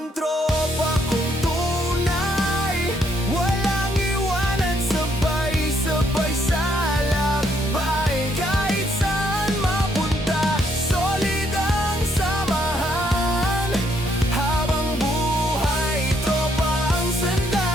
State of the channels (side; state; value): both; normal; correlation 0.71